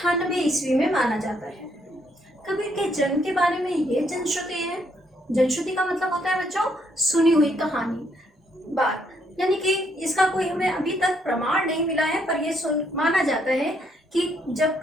ईस्वी में माना जाता है। कबीर के जन्म के बारे में ये जनश्रुति है। जनश्रुति का मतलब होता है बच्चों सुनी हुई कहानी, बात, यानी कि इसका कोई हमें अभी तक प्रमाण नहीं मिला है, पर यह माना जाता है कि जब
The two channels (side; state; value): both; normal; correlation 0.72